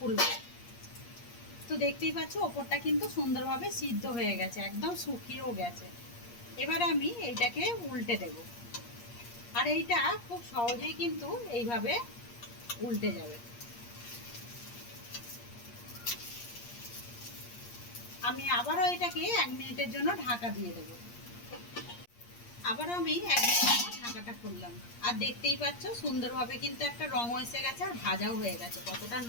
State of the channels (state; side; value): late; right; 8.5 ms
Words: তো দেখতেই পাচ্ছ ওপরটা কিন্তু সুন্দরভাবে সিদ্ধ হয়ে গেছে, একদম শুকিয়েও গেছে। এবারে আমি এইটাকে উল্টে দেব, আর এইটা খুব সহজেই কিন্তু এইভাবে উল্টে যাবে। আমি আবারও এটাকে 1 মিনিটের জন্য ঢাকা দিয়ে দেব। আবারও আমি 1 মিনিট ঢাকাটা খুললাম, আর দেখতেই পাচ্ছ সুন্দরভাবে কিন্তু একটা রং এসে গেছে, আর ভাজাও হয়ে গেছে। কতটা